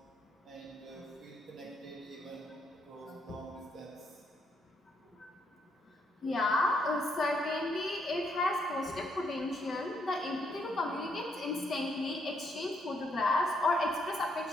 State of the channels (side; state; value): both; normal; correlation 0.74